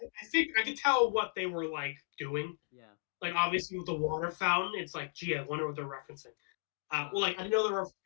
think I could tell what they were like doing. yeah. Like obviously with the water fountain, it's like, gee, I wonder what they're referencing. Well, Uh, like I know they were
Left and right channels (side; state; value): right; silent; digital silence